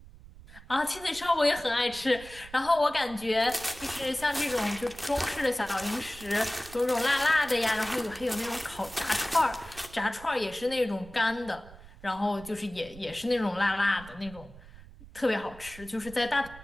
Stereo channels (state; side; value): noise; right; rumble, 19 dB below the sound